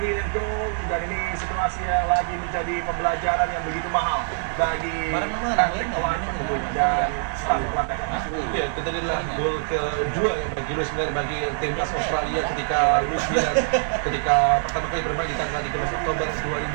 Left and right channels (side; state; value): left; silent; digital silence